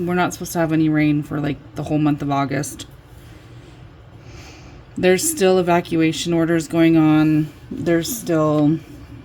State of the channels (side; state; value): both; identical; correlation 1.00